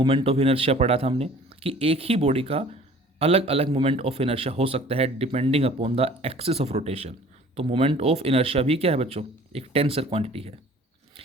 ऑफ इनर्शिया पढ़ा था हमने कि एक ही बॉडी का अलग अलग मोमेंट ऑफ इनर्शिया हो सकता है depending upon the axis of rotation. तो मोमेंट ऑफ इनर्शिया भी क्या है बच्चों, एक टेंसर क्वांटिटी है।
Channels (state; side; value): normal; both; correlation 0.49